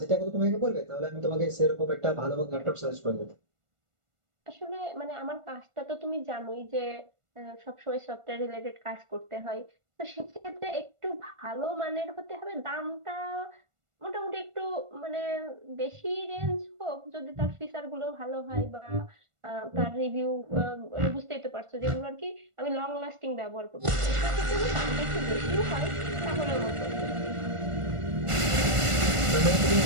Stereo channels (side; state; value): left; late; 1.4 ms